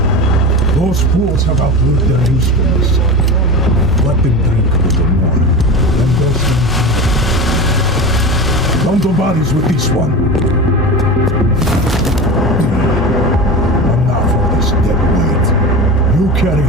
Those fools have outlived their usefulness. Let them drink a little more. Then those things. Don't go bodies with this one. Enough of this dead weight. You carry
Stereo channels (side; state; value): both; normal; correlation 0.28